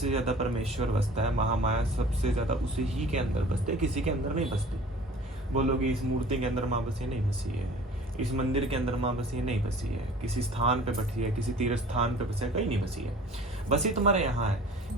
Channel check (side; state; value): both; normal; correlation 0.46